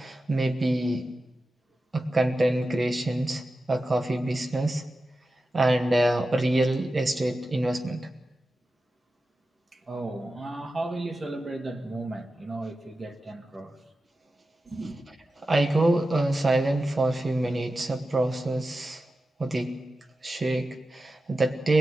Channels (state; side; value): normal; both; correlation 0.92